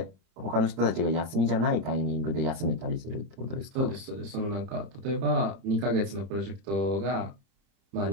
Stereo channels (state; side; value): late; left; 30 ms